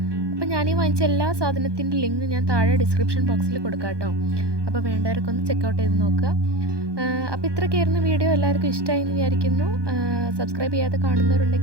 അപ്പോൾ ഞാനീ വാങ്ങിച്ച എല്ലാ സാധനത്തിൻ്റെ ലിങ്ക് ഞാൻ താഴെ ഡിസ്ക്രിപ്ഷൻ ബോക്സിൽ കൊടുക്കാം കേട്ടോ. അപ്പോൾ വേണ്ടവരൊക്കെ ഒന്ന് ചെക്കൗട്ട് ചെയ്ത് നോക്കുക. അപ്പോൾ ഇത്രയൊക്കെയായിരുന്നു വീഡിയോ. എല്ലാവർക്കും ഇഷ്ടമായി എന്ന് വിചാരിക്കുന്നു. സബ്സ്ക്രൈബ് ചെയ്യാതെ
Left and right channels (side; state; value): left; late; 1.2 ms